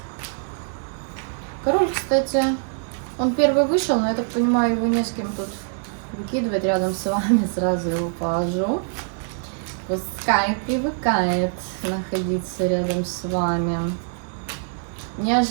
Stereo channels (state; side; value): silent; left; digital silence